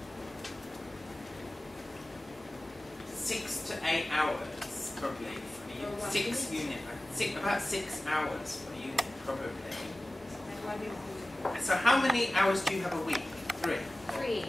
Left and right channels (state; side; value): normal; both; correlation 0.96